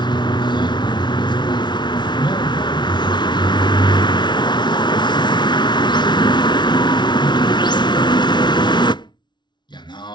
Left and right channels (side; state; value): right; late; 0.21 ms